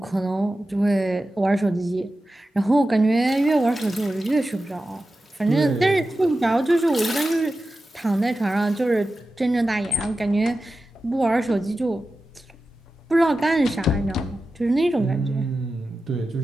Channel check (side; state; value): both; normal; correlation 0.93